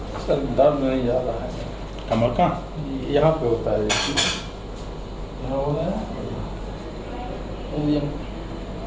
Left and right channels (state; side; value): identical; both; correlation 1.00